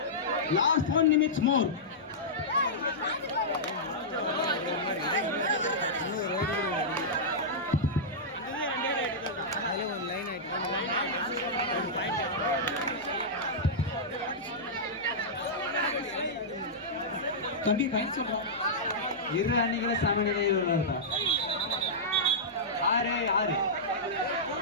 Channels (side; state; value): both; normal; correlation -0.12